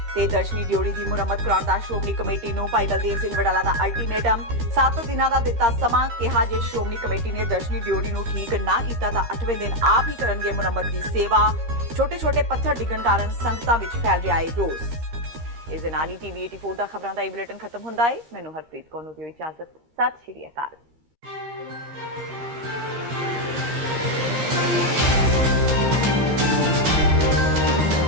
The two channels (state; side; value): late; left; 15 ms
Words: ਤੇ ਦਰਸ਼ਨੀ ਡਿਓੜੀ ਦੀ ਮੁਰੰਮਤ ਕਰਾਉਣ ਦਾ ਸ਼੍ਰੋਮਣੀ ਕਮੇਟੀ ਨੂੰ ਭਾਈ ਬਲਦੇਵ ਸਿੰਘ ਵਡਾਲਾ ਦਾ ਅਲਟੀਮੇਟਮ। 7 ਦਿਨਾਂ ਦਾ ਦਿੱਤਾ ਸਮਾਂ, ਕਿਹਾ ਜੇ ਸ਼੍ਰੋਮਣੀ ਕਮੇਟੀ ਨੇ ਦਰਸ਼ਨੀ ਡਿਓੜੀ ਨੂੰ ਠੀਕ ਨਾ ਕੀਤਾ ਤਾਂ 8ਵੇਂ ਦਿਨ ਆਪ ਹੀ ਕਰਨਗੇ ਮੁਰੰਮਤ ਦੀ ਸੇਵਾ। ਛੋਟੇ-ਛੋਟੇ ਪੱਥਰ ਡਿੱਗਣ ਕਾਰਨ ਸੰਗਤਾਂ ਵਿੱਚ ਫੈਲ ਰਿਹਾ ਹੈ ਰੋਸ। ਇਸ ਦੇ ਨਾਲ ਹੀ TV 84 ਦਾ ਖਬਰਾਂ ਦਾ ਇਹ ਬੁਲੇਟਿਨ ਖਤਮ ਹੁੰਦਾ ਹੈ। ਮੈਨੂੰ ਹਰਪ੍ਰੀਤ ਕੌਰ ਨੂੰ ਦਿਓ ਇਜਾਜ਼ਤ। ਸਤਿ ਸ਼੍ਰੀ ਅਕਾਲ।